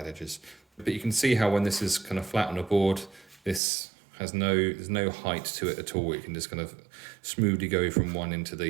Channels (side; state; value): left; drops out; at 3.6 s